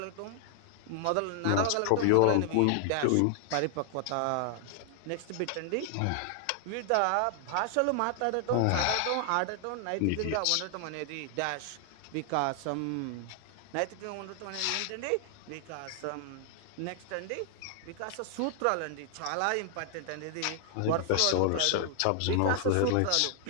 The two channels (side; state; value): both; different; correlation 0.00